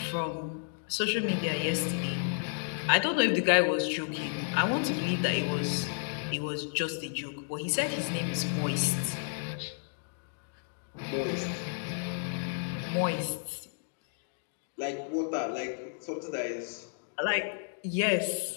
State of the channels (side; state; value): right; silent; digital silence